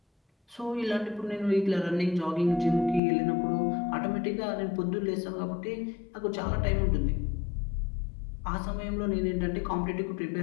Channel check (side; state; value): right; drops out; at 3.0 s